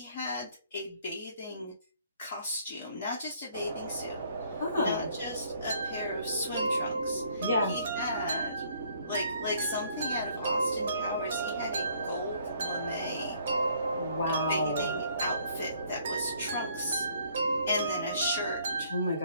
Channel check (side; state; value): both; inverted; correlation -0.63